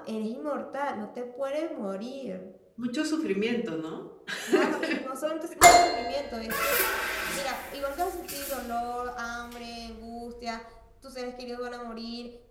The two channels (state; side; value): identical; both; correlation 1.00